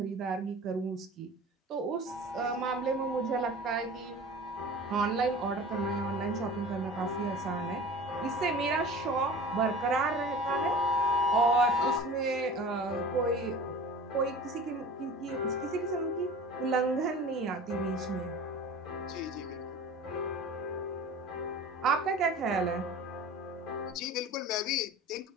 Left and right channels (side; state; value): both; normal; correlation 0.39